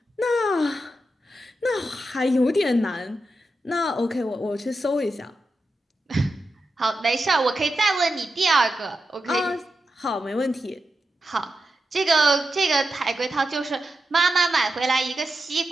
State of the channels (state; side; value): normal; both; correlation 0.89